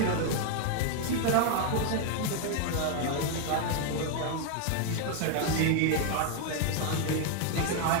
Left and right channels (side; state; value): both; different; correlation 0.00